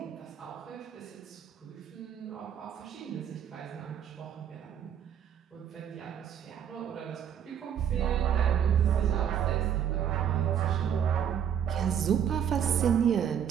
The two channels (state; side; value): quieter; left; 9.0 dB